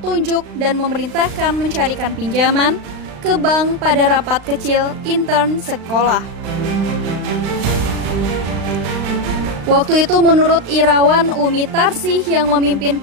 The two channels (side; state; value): left; late; 36 ms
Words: dan memerintahkan mencarikan pinjaman ke bank pada rapat kecil intern sekolah. Waktu itu menurut Irawan, Umi Tarsih yang memimpin